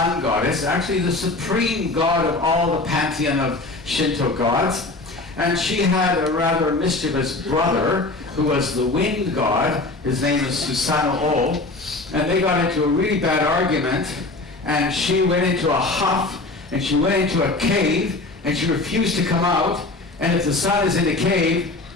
goddess, actually the supreme god of all the pantheon of Shinto gods. And she had a rather mischievous brother who was the wind god. His name is Susanoo, and they got into a really bad argument, and she went into a huff, and she went into a cave, and she refused to come out. And if the sun is in a cave,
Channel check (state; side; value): quieter; right; 3.2 dB